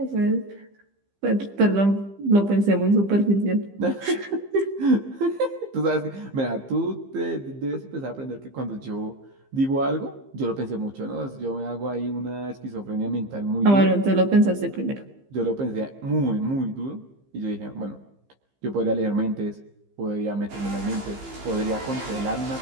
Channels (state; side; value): late; left; 15 ms